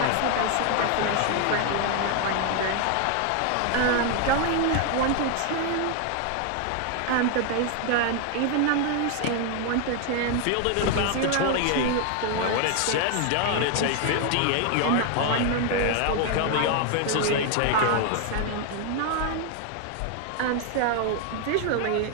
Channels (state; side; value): different; both; correlation 0.00